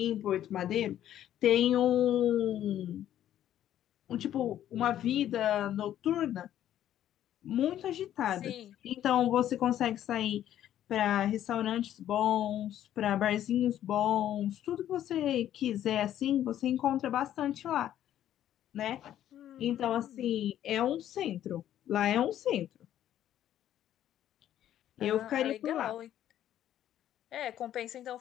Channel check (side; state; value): right; quieter; 11.6 dB